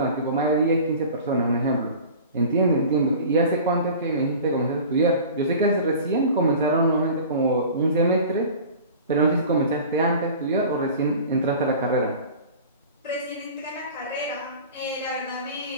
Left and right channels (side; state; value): both; inverted; correlation -0.40